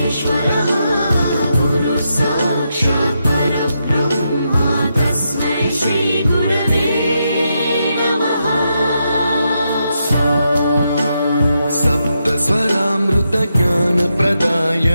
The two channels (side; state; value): both; inverted; correlation -0.83